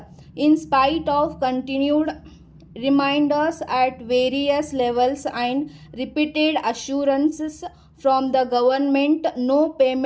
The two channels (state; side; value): identical; both; correlation 1.00